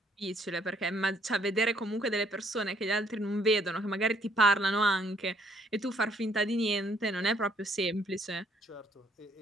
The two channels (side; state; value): both; normal; correlation 0.67